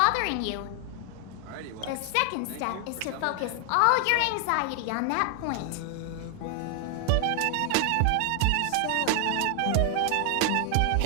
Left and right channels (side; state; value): both; different; correlation 0.00